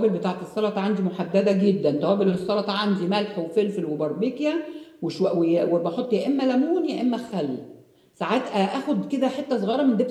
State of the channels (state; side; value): identical; both; correlation 1.00